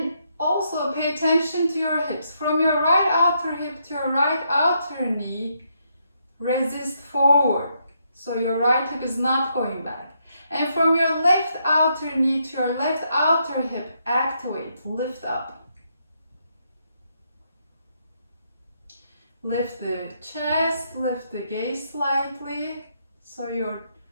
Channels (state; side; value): inverted; both; correlation -0.77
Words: also pay attention to your hips. From your right outer hip to your right outer knee, resist forward. So your right hip is not going back. And from your left outer knee to your left outer hip, activate, lift up. Lift the chest, lift the gaze slightly, so you